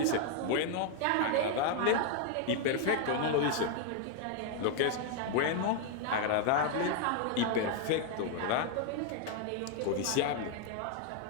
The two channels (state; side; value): different; both; correlation 0.00